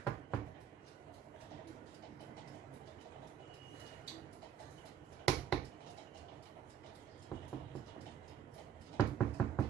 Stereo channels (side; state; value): left; quieter; 9.1 dB